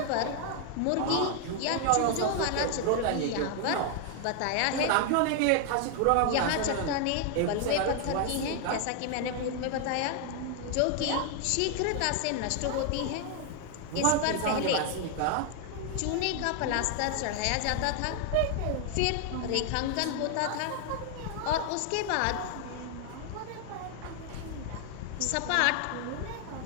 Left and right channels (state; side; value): different; both; correlation 0.00